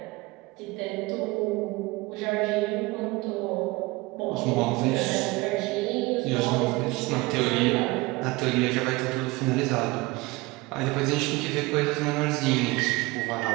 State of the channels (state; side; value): quieter; left; 22.8 dB